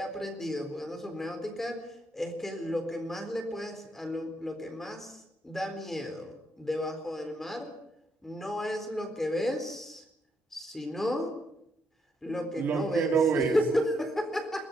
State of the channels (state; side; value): normal; both; correlation 0.76